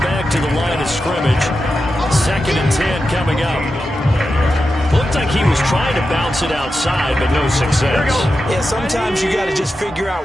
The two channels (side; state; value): both; normal; correlation 0.90